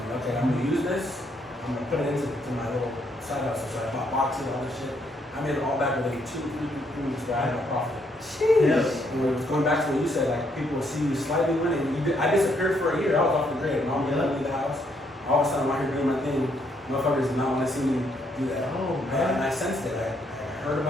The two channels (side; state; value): both; normal; correlation 0.73